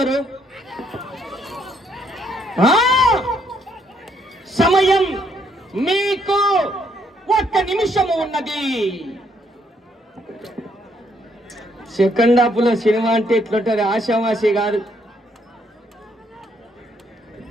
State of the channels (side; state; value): both; normal; correlation 0.71